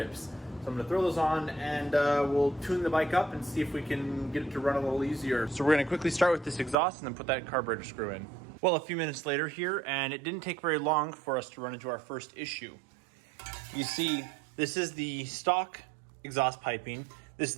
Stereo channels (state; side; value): drops out; left; at 6.8 s